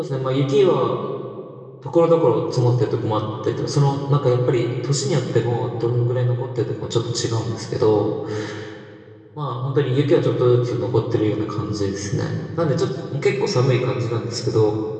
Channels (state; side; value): identical; both; correlation 1.00